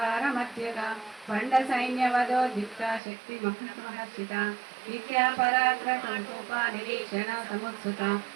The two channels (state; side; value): drops out; left; at 3.0 s